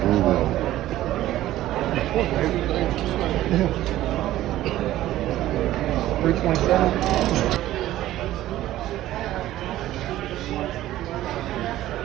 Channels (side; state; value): left; quieter; 14.5 dB